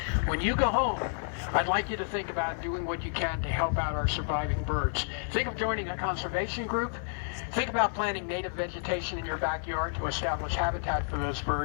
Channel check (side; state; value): right; silent; 58 dB below the other